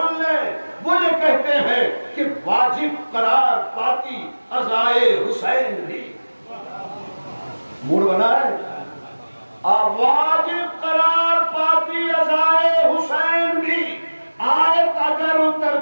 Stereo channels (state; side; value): inverted; both; correlation -1.00